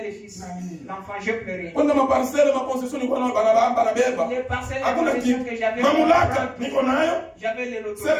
les fils. L'enfant, j'ai pleuré. Kwenda maparcelle mapossession nilikuwa na banabamba na beba. Les parcelles que j'avais. Mamlaka niko nayo. J'avais les lotos.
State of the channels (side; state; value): both; identical; correlation 1.00